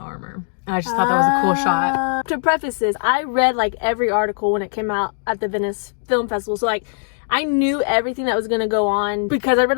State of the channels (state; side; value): silent; right; 66 dB below the other